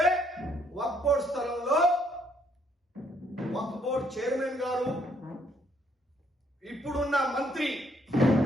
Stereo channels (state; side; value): normal; both; correlation 0.68